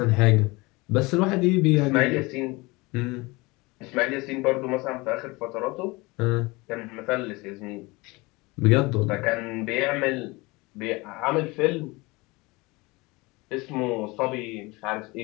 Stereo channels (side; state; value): right; quieter; 24.0 dB